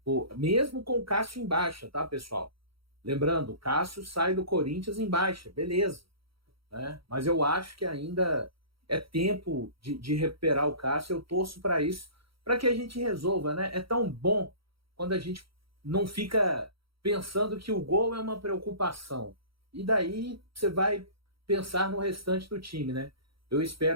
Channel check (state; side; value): late; left; 0.75 ms